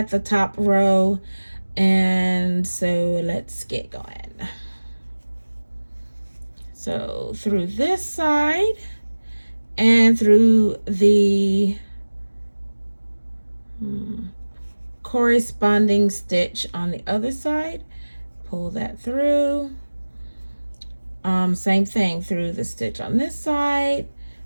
the top row. And so let's get going. So through this side and through the corresponding stitch on the other side, pull that through. Same thing through the stitch on this side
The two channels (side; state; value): both; inverted; correlation -1.00